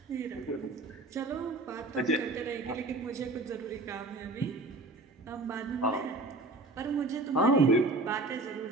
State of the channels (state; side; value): quieter; left; 3.0 dB